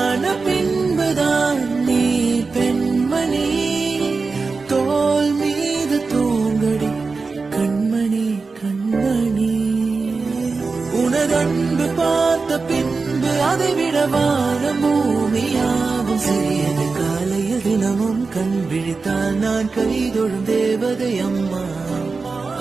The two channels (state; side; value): quieter; left; 4.3 dB